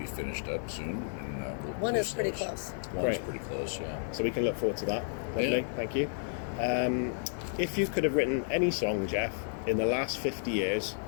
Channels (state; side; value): silent; right; 56 dB below the other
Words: finished up soon. And we'll One is release pretty those. close. One is Great. pretty close, yeah. So we can look forward to that. Lovely, Yeah. thank you. If you could have written any song, Geoff, in the last 50 years